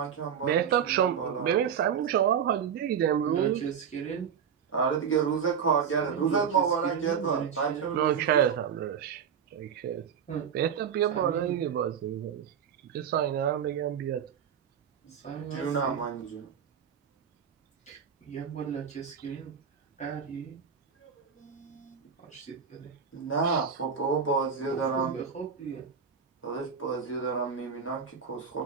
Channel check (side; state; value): left; quieter; 7.4 dB